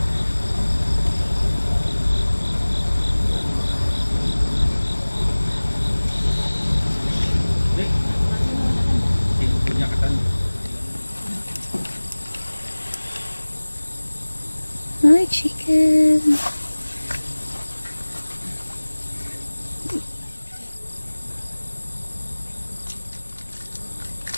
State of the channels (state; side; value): inverted; both; correlation -1.00